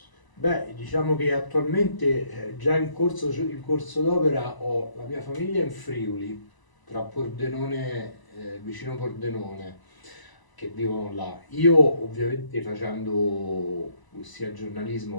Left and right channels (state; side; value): late; right; 1.0 ms